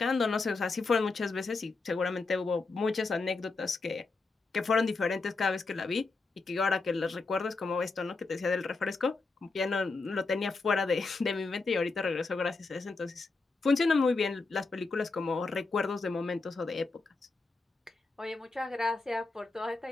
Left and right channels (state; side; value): quieter; right; 3.8 dB